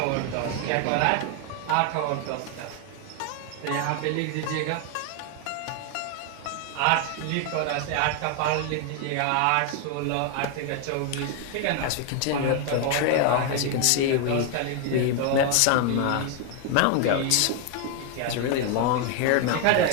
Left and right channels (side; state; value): both; different; correlation 0.00